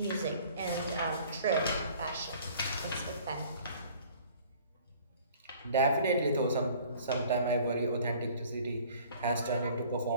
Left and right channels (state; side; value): inverted; both; correlation -0.52